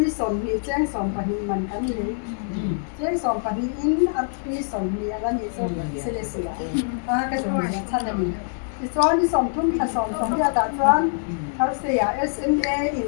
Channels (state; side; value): silent; right; digital silence